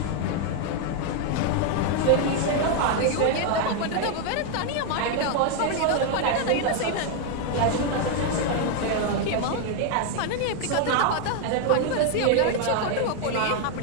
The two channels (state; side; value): different; both; correlation 0.00